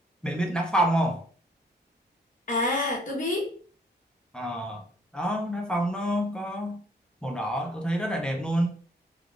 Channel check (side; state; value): both; normal; correlation 0.63